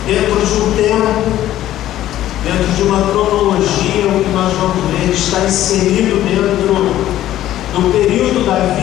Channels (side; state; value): right; quieter; 13.3 dB